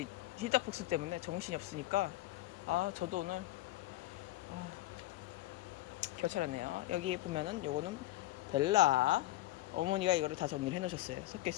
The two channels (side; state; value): right; quieter; 16.2 dB